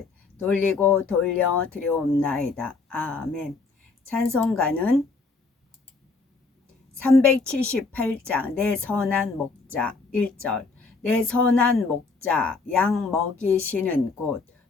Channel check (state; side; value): quieter; right; 4.1 dB